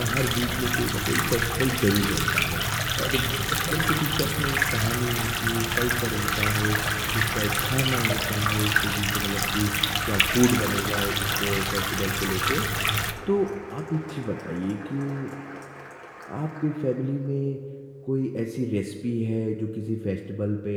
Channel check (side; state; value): both; identical; correlation 1.00